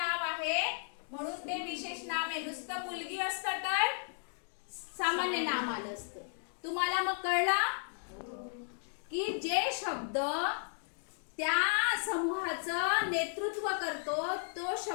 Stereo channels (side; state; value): right; silent; digital silence